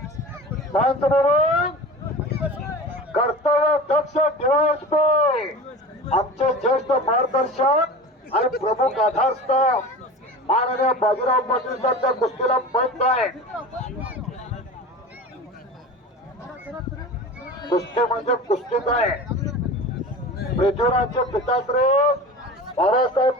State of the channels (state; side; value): normal; both; correlation 0.34